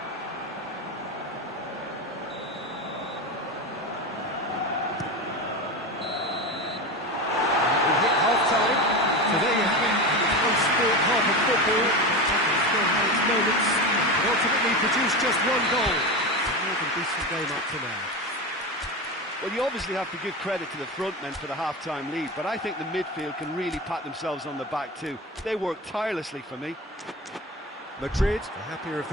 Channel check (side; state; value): both; normal; correlation 0.22